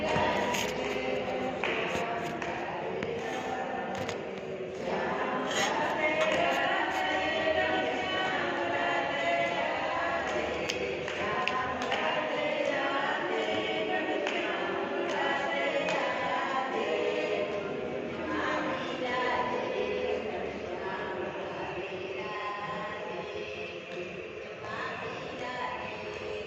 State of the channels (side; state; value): both; identical; correlation 1.00